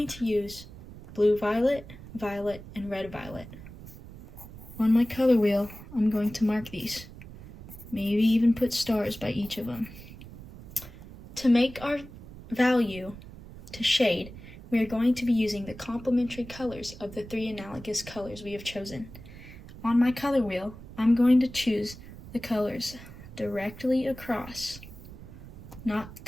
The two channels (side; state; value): right; noise; rumble, 16 dB below the sound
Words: to use blue violet, violet, and red violet. On my color wheel, I'm going to mark these. Maybe even put stars by each of them. To make our value to shade, we are going to be using the complementary colors of the 3 analogous colors we have chosen. On my color wheel, I'm going to choose the colors directly across, not